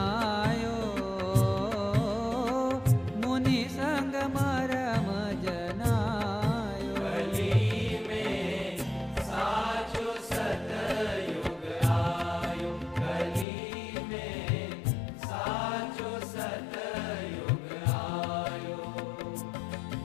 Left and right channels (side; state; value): right; drops out; at 13.5 s